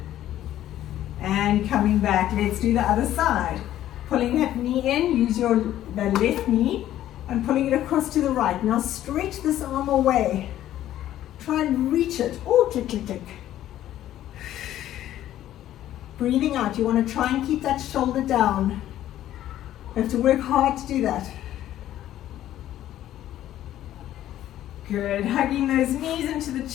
And coming back, let's do the other side. Pulling that knee in, use the left knee and pulling it across to the right. Now stretch this arm away. Try and reach it. Oh, click, click, click. Breathing out. You want to try and keep that shoulder down. You have to work hard to do that. Good. Hugging those knees into the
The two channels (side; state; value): right; quieter; 12.7 dB